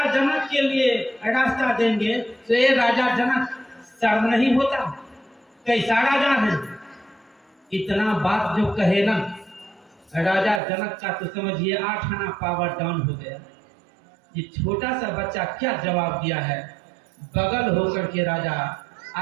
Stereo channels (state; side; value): drops out; left; at 10.6 s